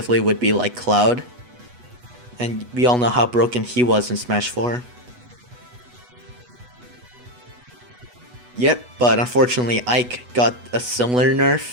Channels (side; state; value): left; late; 8.1 ms